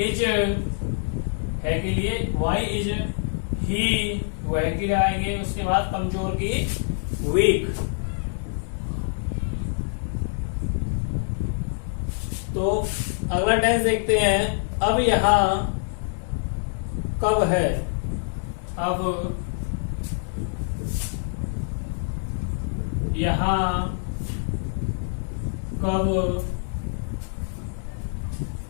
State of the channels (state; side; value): silent; right; 61 dB below the other